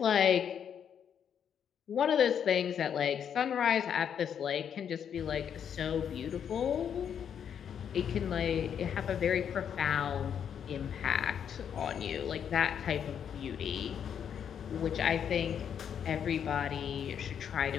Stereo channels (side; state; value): right; quieter; 8.3 dB